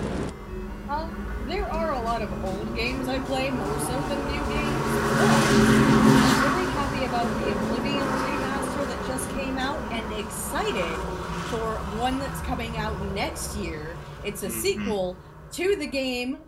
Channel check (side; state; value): both; identical; correlation 1.00